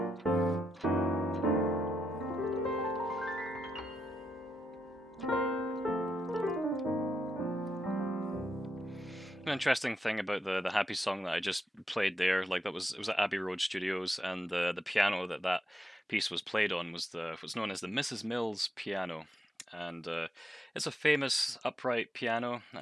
An interesting thing about the happy song that I just played there, like that was it was at Abbey Road Studios, and the piano that that piece was played on was the what's known as the Mrs. Mills piano, and it's a famous upright piano. It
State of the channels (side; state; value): both; normal; correlation 0.83